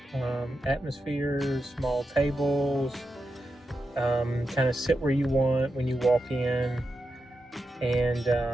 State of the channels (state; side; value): normal; both; correlation 0.88